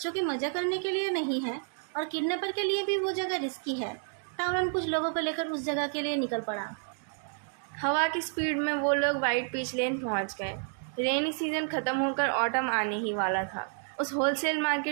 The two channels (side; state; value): left; silent; 58 dB below the other